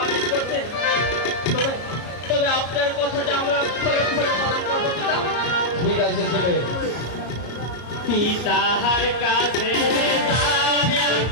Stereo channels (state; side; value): late; right; 33 ms